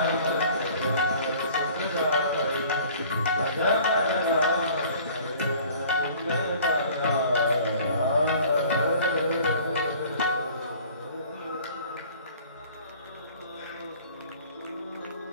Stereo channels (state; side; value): inverted; both; correlation -0.49